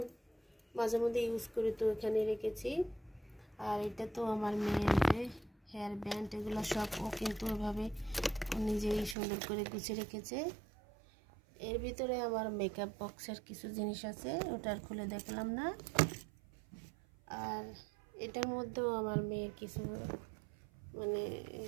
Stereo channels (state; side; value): drops out; left; at 9.2 s